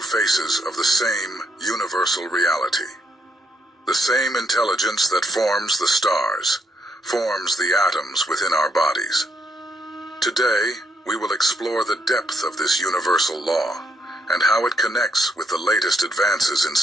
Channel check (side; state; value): both; normal; correlation 0.74